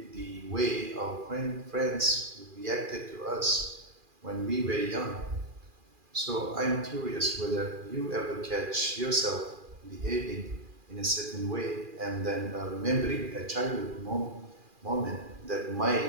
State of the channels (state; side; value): late; left; 2.4 ms